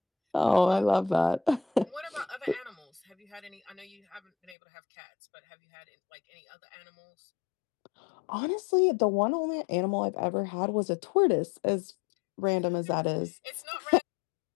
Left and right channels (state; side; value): drops out; right; at 4.5 s